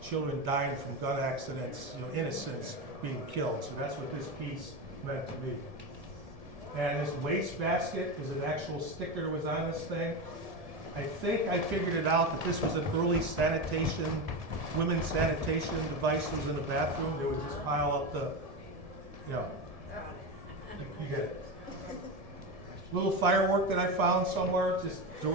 Children dying from gun accidents, innocents being killed. So that's what this piece meant to me. And this waste basket is an actual sticker that was on this thing. I think I figured it out that this was an early sanitation, women's sanitation device that was in the bathroom. They would just pile up the, you get it. Little firework that I found somewhere, just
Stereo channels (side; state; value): left; late; 1.7 ms